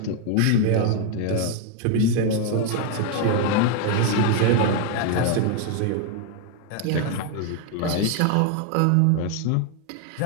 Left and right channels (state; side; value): different; both; correlation 0.00